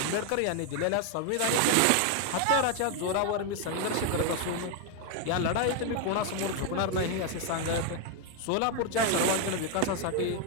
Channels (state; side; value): different; both; correlation 0.01